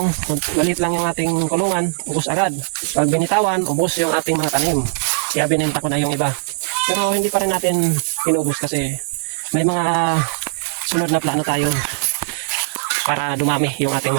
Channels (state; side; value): silent; left; digital silence